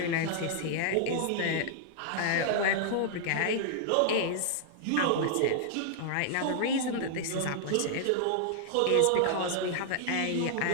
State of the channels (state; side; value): different; both; correlation -0.01